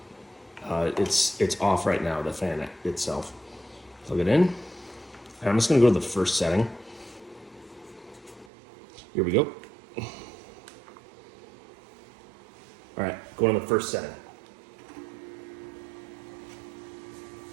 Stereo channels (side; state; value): left; drops out; at 8.5 s